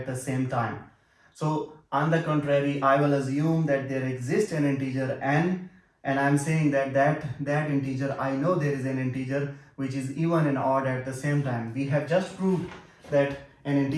the same time. So on the contrary, I will assume that there exists an integer n, and I'm saying that that integer, I know there is an integer which is even and odd at the same time. We have just proved that an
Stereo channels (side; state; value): both; identical; correlation 1.00